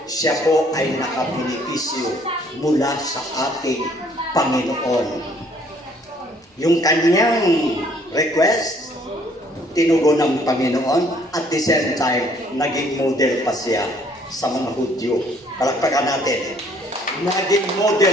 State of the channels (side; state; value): both; normal; correlation 0.62